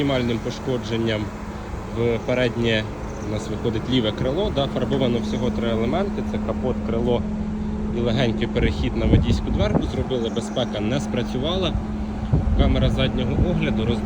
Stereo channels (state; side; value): identical; both; correlation 1.00